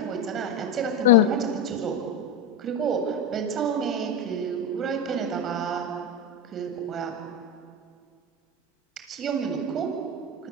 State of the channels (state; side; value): normal; both; correlation 0.14